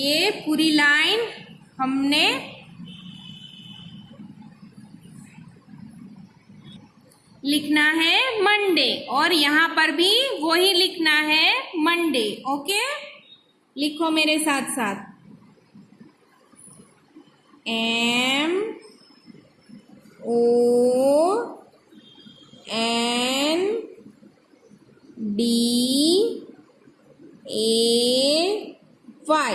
पूरी लाइन हमने लिखना है मंडे, और यहाँ पर भी वही लिखना है मंडे, ओके। लिखो मेरे साथ साथ,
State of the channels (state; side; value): identical; both; correlation 1.00